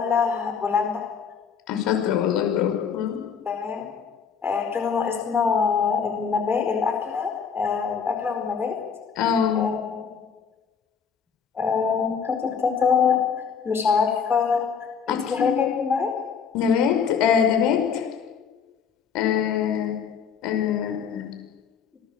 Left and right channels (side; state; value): right; quieter; 6.7 dB